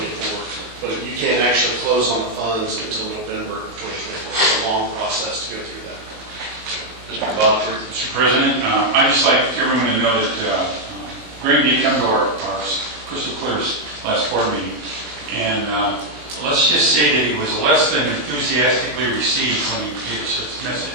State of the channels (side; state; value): left; late; 21 ms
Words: but you can't actually close on the funds until November of 2024. It's a long process to go through that. Mr. Butler. Mr. President, I'd just like everyone to know that Greg did come to our Crystal Clear's last board meeting, and let's just say that he was less than enthusiastically received when he gave us his